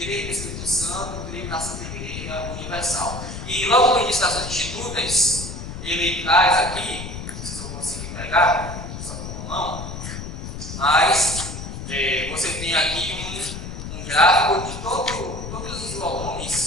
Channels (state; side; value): noise; left; rumble, 8 dB below the sound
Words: no Espírito Santo, creio na Santa Igreja Universal. E logo no início das suas Institutas, ele traz aqui, não sei se eu vou conseguir pegar, só com a mão, mas você tem aqui um gráfico de todos os